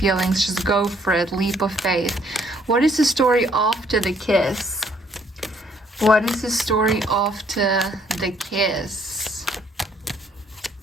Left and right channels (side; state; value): both; normal; correlation 0.65